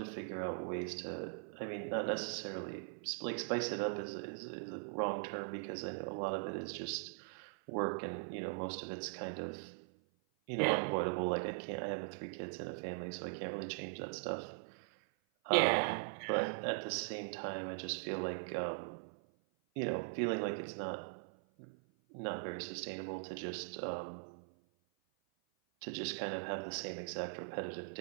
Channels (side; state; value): left; silent; 51 dB below the other